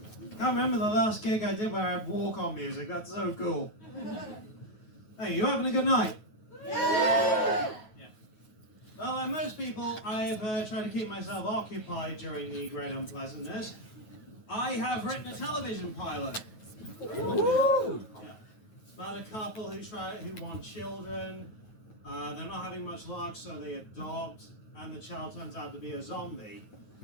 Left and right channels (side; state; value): right; late; 9.3 ms